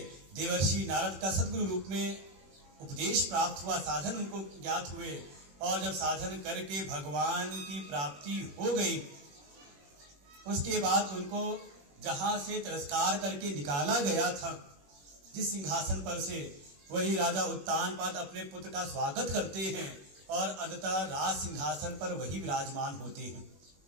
देवर्षि नारद का सद्गुरु रूप में उपदेश प्राप्त हुआ, साधन उनको ज्ञात हुए, और जब साधन करके भगवान की प्राप्ति हो गई, उसके बाद उनको जहां से तिरस्कार करके निकाला गया था जिस सिंहासन पर से, वही राजा उत्तानपाद अपने पुत्र का स्वागत करते हैं और अंततः राज सिंहासन पर वही विराजमान होते हैं।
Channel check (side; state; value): left; late; 21 ms